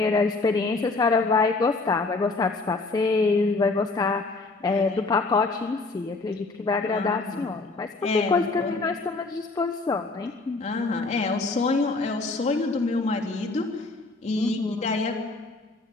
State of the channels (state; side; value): quieter; right; 3.6 dB